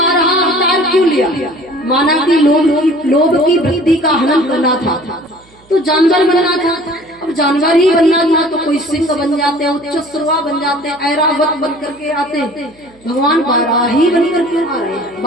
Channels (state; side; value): noise; right; hum, 29 dB below the sound